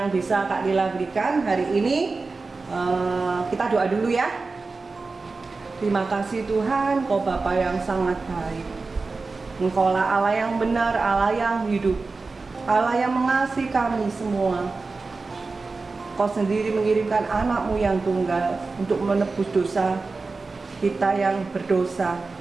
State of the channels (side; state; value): left; quieter; 3.9 dB